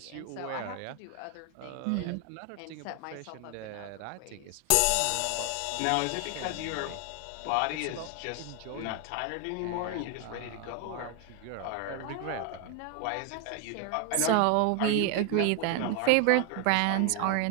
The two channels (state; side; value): different; both; correlation 0.01